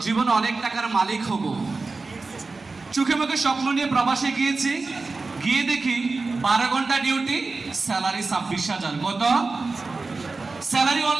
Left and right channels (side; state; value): left; quieter; 3.8 dB